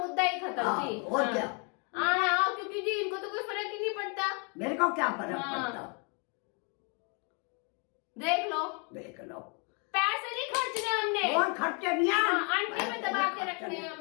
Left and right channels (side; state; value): right; quieter; 36.0 dB